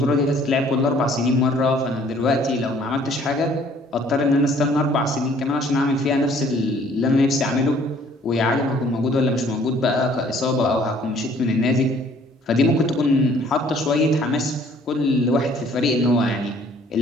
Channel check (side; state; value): both; normal; correlation 0.58